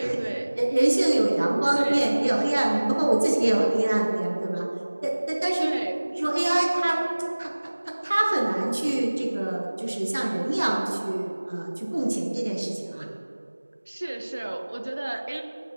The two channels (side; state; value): both; inverted; correlation -1.00